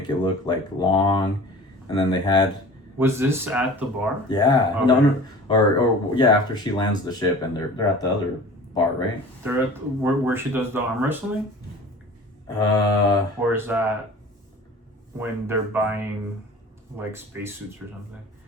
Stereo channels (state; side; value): normal; both; correlation 0.42